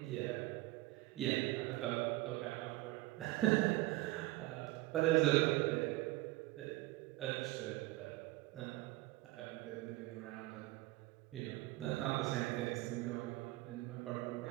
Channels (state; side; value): quieter; left; 19.2 dB